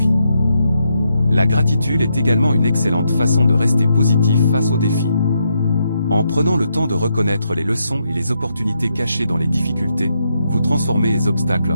La gratitude est également une excellente façon de rester positif face aux défis. En prenant le temps de reconnaître les leçons et les opportunités cachées dans les difficultés, vous transformez les obstacles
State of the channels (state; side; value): inverted; both; correlation -0.80